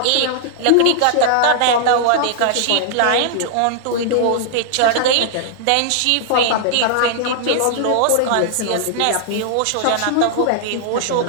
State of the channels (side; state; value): both; different; correlation -0.01